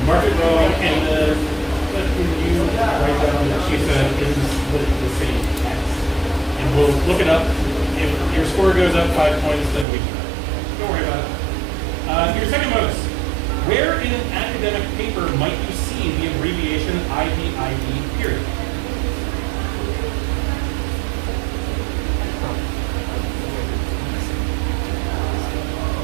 mark it wrong, and what can you write down that she said is the same text? And we'll look it up. If your score goes up 5 points, then we can. Don't worry about it. Your second bonus. Where in an academic paper might you see the abbreviation IBID period?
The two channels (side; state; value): left; drops out; at 9.9 s